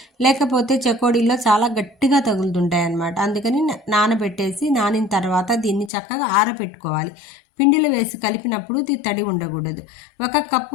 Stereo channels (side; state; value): right; drops out; at 5.9 s